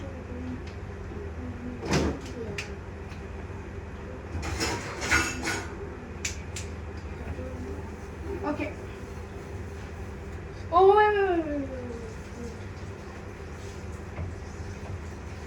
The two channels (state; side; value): identical; both; correlation 1.00